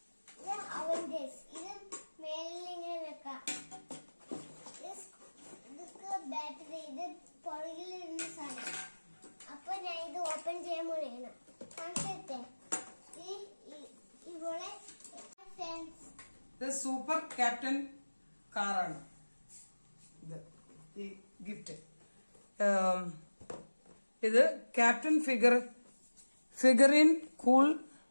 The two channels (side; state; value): both; inverted; correlation -1.00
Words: ഇത് അവന്റേഴ്സ്. ഇത് മേലിൽ ഇങ്ങനെ വെക്കാം. ഇതൊക്കെ ബാറ്ററി. ഇത് പുറകിൽ ഇരുന്ന സാധനം. അപ്പൊ ഞാൻ ഇത് ഓപ്പൺ ചെയ്യാൻ പോലെയാണ്. കാണിച്ചേ ഇവിടെ സൂപ്പർ ക്യാപ്റ്റൻ കാറാണ് ഇത്. ഈ ഗിഫ്റ്റ് ഇത് captain figurine cool